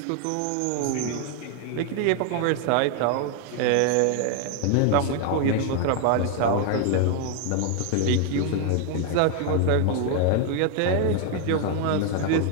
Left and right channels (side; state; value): both; different; correlation 0.00